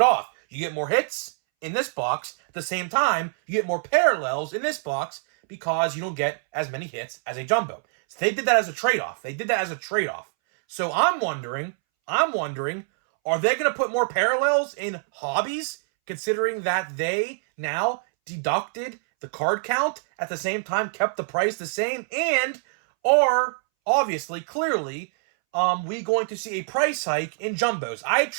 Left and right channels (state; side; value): silent; left; 62 dB below the other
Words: off. You get more hits in this box. At the same time, you get more parallels in this box because you don't get as many hits as a jumbo. So they did that as a trade-off. So I'm wondering, are they going to put more parallels in hobbies considering that they now deducted the card count, at the same time kept the price the same, and are obviously, clearly, we going to see a price hike in jumbos? I